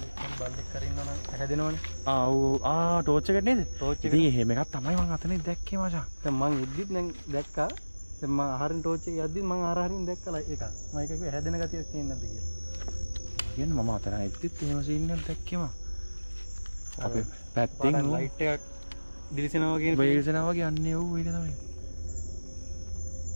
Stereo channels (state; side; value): inverted; both; correlation -1.00